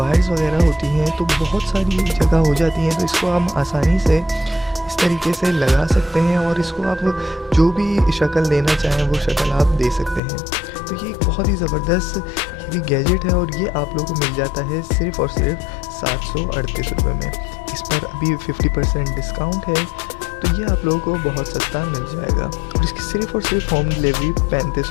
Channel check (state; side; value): drops out; right; at 10.2 s